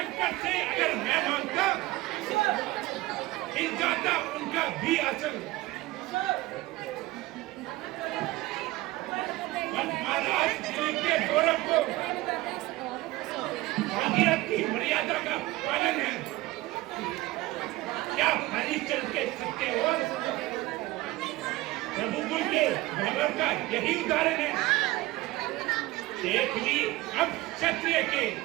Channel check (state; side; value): quieter; left; 18.9 dB